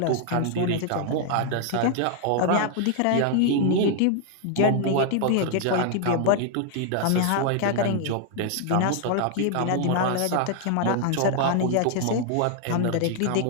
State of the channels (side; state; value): both; different; correlation 0.00